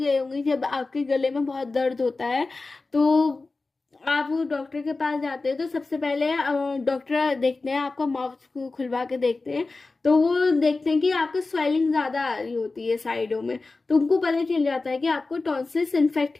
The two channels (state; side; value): quieter; right; 3.6 dB